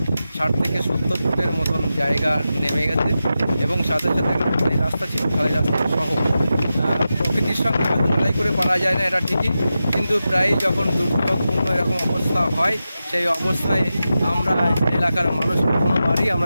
60 থেকে 70 ফুটের মতন জায়গা নেমে গেছে এবং সাথে সাথে খালি রাস্তা ছিল, খালি রাস্তা সহ। প্রকৃতির সঙ্গে হয়তো লড়াই করে পারা যায় না, এটা ঠিকই, কিন্তু প্রায় যখন দুর্যোগপূর্ণ এরকম অবস্থা হয় সেই অবস্থায় আমরা এলাকার মানুষ কোনোবারই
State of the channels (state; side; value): inverted; both; correlation -0.92